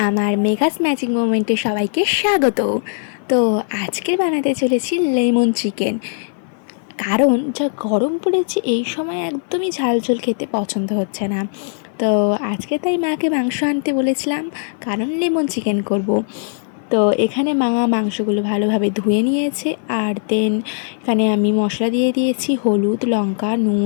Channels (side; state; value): right; silent; 57 dB below the other